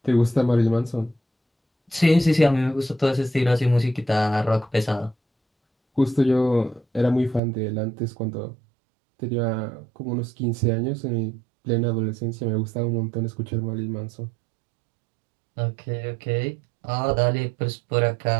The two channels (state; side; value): drops out; left; at 7.4 s